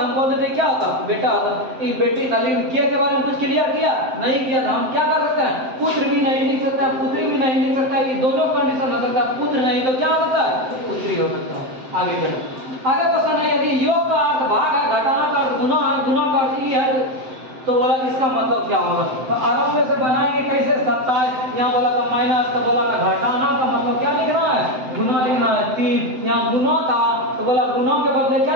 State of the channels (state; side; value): late; left; 7.8 ms